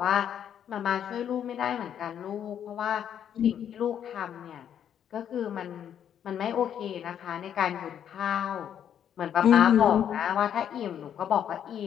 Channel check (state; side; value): quieter; right; 9.3 dB